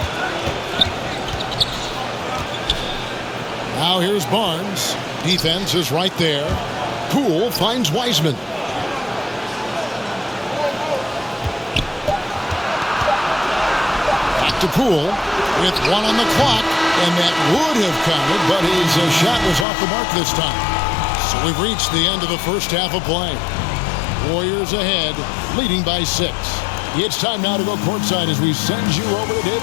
Now here's Barnes. Defense is right there. Poole finds Wiseman. Back to Poole with 1 on the clock. And that would have counted, but his shot was off the mark this time. So we've reached the end of the first half of play. Warriors ahead, leading by 6. It's time now to go courtside as we send you over to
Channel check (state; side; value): drops out; right; at 19.7 s